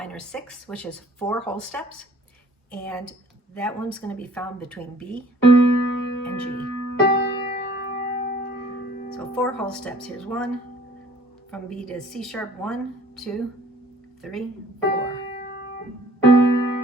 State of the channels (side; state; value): both; normal; correlation 0.55